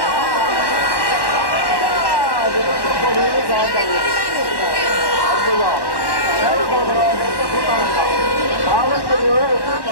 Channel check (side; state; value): right; late; 1.1 ms